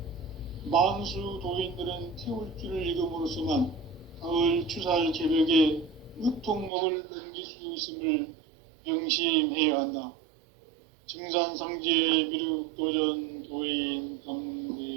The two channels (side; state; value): left; drops out; at 6.7 s